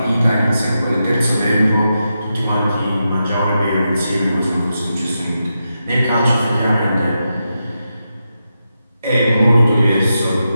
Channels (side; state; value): both; inverted; correlation -0.87